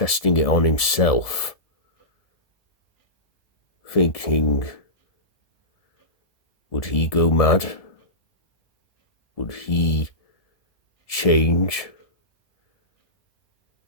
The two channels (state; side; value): late; right; 1.7 ms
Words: it on himself, thinking, would he go mad? Would he change?